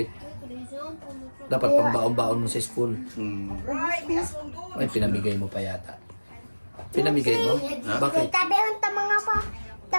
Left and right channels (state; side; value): inverted; both; correlation -1.00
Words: Dapat pang baon-baon mo sa school. Ay, pinamigay mo pa yata. Pinamigay mo? Bakit? Tabi ang tamanga pa.